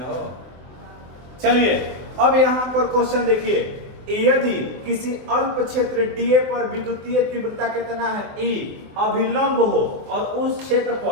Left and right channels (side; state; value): left; late; 24 ms